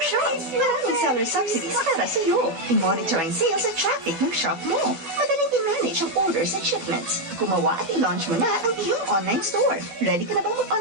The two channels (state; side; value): late; left; 12 ms